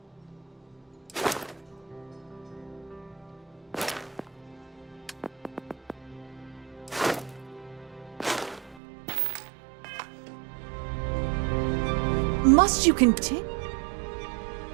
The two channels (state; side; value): drops out; left; at 8.8 s